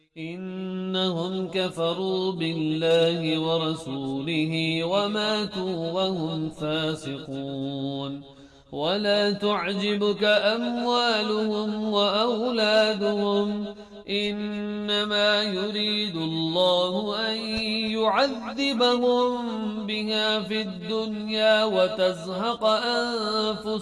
إنهم كفروا بالله ورسوله وماتوا وهم فاسقون. ولا تعجبك أموالهم وأولادهم إنما يريد الله أن يعذبهم بها في الدنيا وتزهق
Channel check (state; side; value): identical; both; correlation 1.00